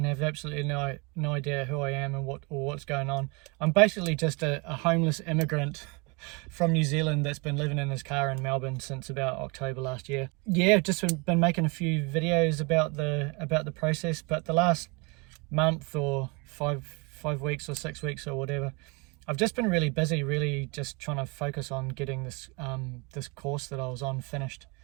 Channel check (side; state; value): left; quieter; 29.7 dB